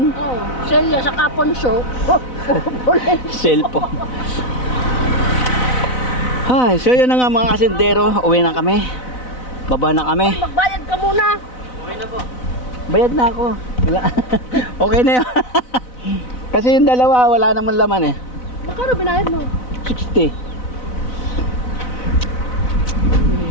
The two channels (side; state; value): right; late; 4.0 ms